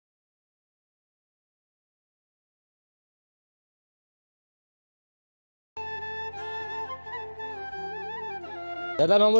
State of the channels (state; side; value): inverted; both; correlation -1.00